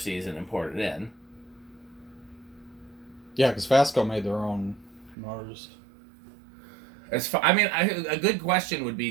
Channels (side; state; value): left; drops out; at 5.2 s